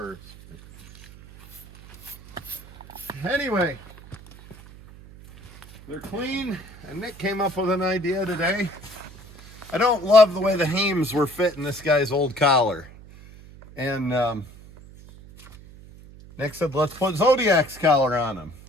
Anyway, they're clean, and Nick came up with an idea today. I don't love the way the hames were fitting this guy's old collar. And Nick said, let's put Zodiac's collar on him.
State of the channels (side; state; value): right; noise; hum, 20 dB below the sound